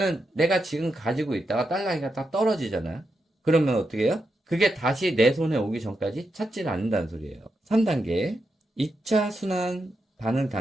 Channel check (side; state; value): both; normal; correlation 0.85